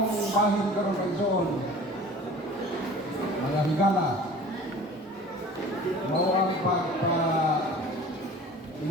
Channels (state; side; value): normal; both; correlation 0.43